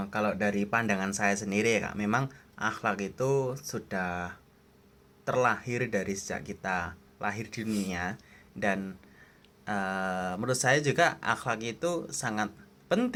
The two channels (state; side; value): identical; both; correlation 1.00